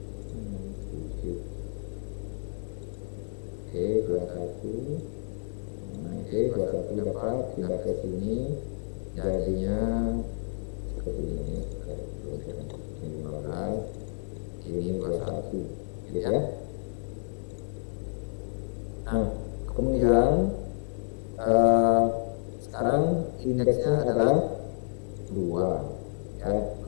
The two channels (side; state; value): right; silent; 58 dB below the other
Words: Oke, 21. Oke, 21 dapat pindah ke sini. Jadinya seperti ini sebentar. Ini 15, ini 21, gitu ya. Nah, kemudian sekarang indeksnya adalah 2 ya,